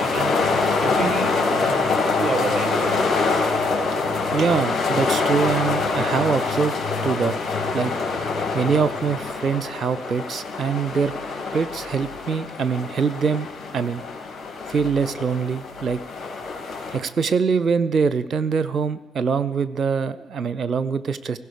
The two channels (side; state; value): both; normal; correlation 0.70